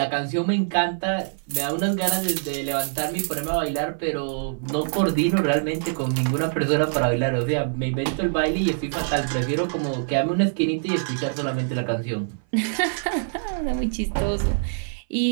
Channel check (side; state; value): left; silent; 57 dB below the other